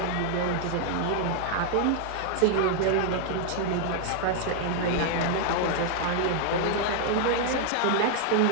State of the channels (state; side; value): different; both; correlation 0.00